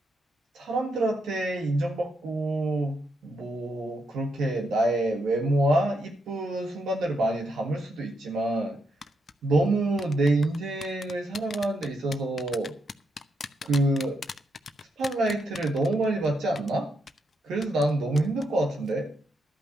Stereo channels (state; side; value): normal; both; correlation 0.80